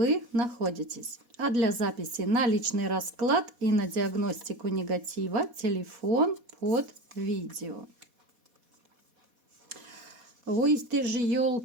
находитесь. А для записи на личный расклад и на диагностику негатива телефон под видео. Ой, ты же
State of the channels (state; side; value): late; left; 4.1 ms